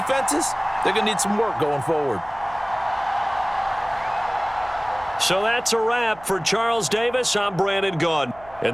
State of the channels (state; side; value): noise; right; hum, 22 dB below the sound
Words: they're going to need some work going forward. So that's a wrap for Charles Davis. I'm Brandon Gaudin.